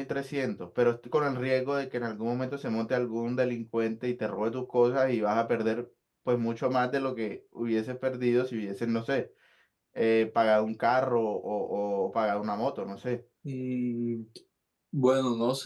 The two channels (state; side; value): identical; both; correlation 1.00